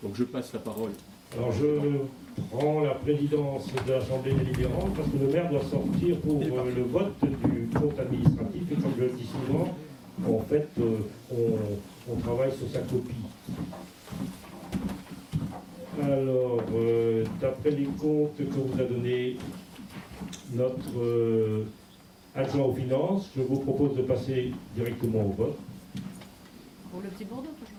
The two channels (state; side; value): identical; both; correlation 1.00